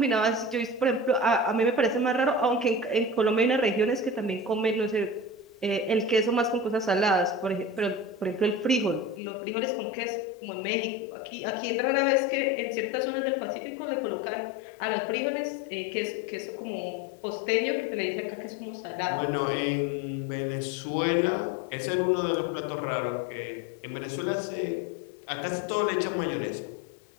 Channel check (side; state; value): right; drops out; at 9.2 s